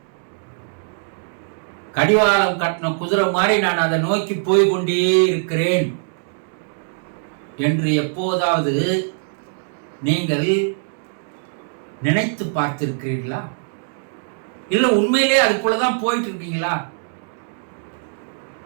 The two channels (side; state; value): left; silent; digital silence